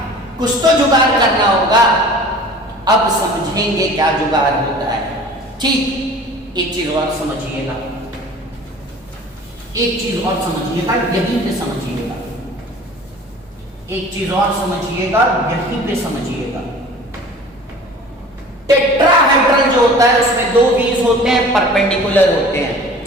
कुछ तो जुगाड़ करना होगा। अब समझेंगे क्या जुगाड़ होता है। ठीक, एक चीज और समझिएगा, एक चीज और समझिएगा, यहीं पे समझिएगा, एक चीज और समझिएगा, यहीं पे समझिएगा। टेट्राहेड्रल जो होता है उसमें 2 व्हील्स होते हैं, परपेंडिकुलर होते हैं।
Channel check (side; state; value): both; normal; correlation 0.44